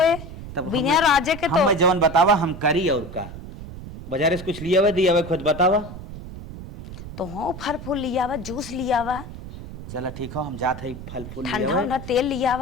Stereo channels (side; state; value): right; noise; rumble, 12 dB below the sound